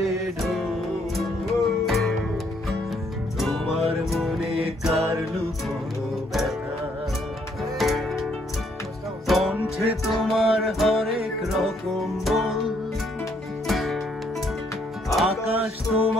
ঢোল, তোমার মনে কার লুকোনো ব্যথা। কণ্ঠে তোমার হরেক রকম বল, আকাশ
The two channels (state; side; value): normal; both; correlation 0.69